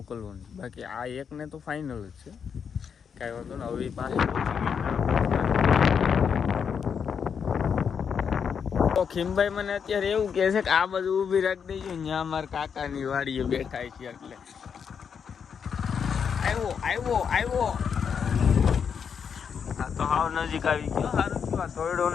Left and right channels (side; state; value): right; quieter; 6.9 dB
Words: બાકી આ એકને તો ફાઇનલ જ છે, કાંઈ વાંધો ને. હવે પાસે તો ખીમભાઈ મને અત્યારે એવું કહે છે કે આ બધું ઊભી રાખી દેજો, ત્યાં મારા કાકાની વાડીએ બેઠા છે એટલે આવ્યો. હા તો હાવ નજીક આવી ગયો. સારું થોડો